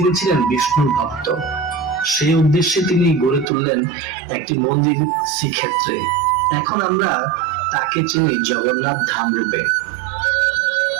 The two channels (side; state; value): left; drops out; at 3.5 s